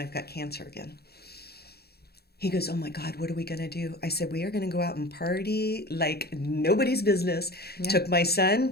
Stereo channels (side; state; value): right; late; 0.46 ms